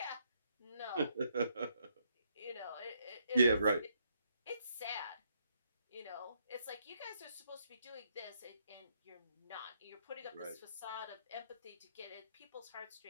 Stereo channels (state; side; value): inverted; both; correlation -0.73